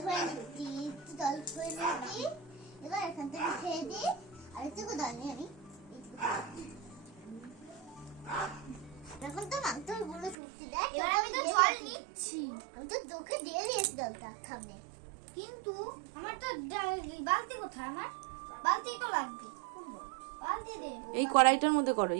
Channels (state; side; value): drops out; left; at 10.4 s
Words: করে নিচ্ছি, একটু দল করে নিচ্ছি। এবার এখান থেকে খেয়ে দিই, আর একটু দল নিয়ে আমি এখন তো মাংস গুলো ফুটছে। দেখ এবার আমি তো জল নিচ্ছি, আমি তো চোখে দিয়ে দিয়েছি জলটা সামনে, কিন্তু আমার তো বালতি কোথায়? আমার বালতি তো লাগবে। বালতি দে, এই কড়াইটার মধ্যে করো,